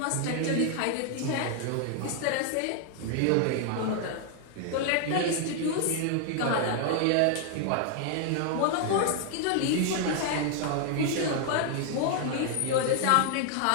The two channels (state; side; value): different; both; correlation 0.00